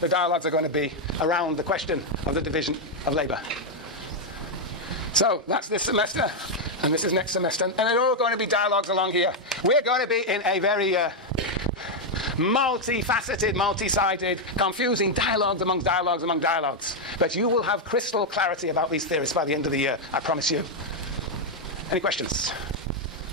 dialogues are going to be around the question of the division of labour. So that's this semester, and this is next semester. And they're all going to be dialogues along here. We're going to be in a very multifaceted, multi-sided, confusing dialogues among dialogues. But you will have crystal clarity about these theories by the end of the year, I promise you. Any questions?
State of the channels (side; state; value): both; normal; correlation 0.01